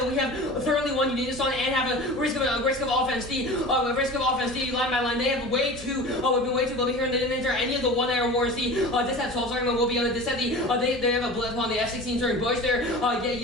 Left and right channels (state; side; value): normal; both; correlation 0.36